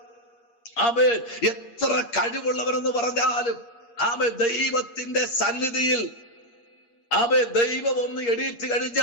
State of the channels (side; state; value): right; late; 8.5 ms